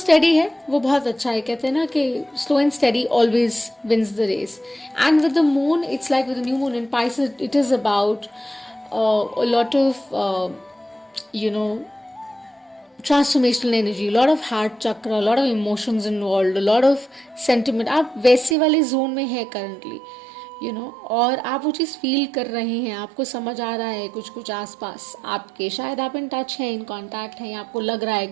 है वो बहुत अच्छा है. कहते हैं ना कि slow and steady always wins the race. And with the moon, it's like with the new moon in Pisces, it is about a lot of transformational energy, a lot of heart chakra, a lot of emotions involved, a lot of sentiment. आप वैसे वाले जोन में है करंटली, और आप वो चीज़ फील कर रहे हैं, आपको समझ आ रहा है कुछ कुछ आसपास आपके, शायद आप इन टच हैं, इन कांटेक्ट हैं, आपको लग रहा है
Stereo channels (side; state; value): left; drops out; at 18.6 s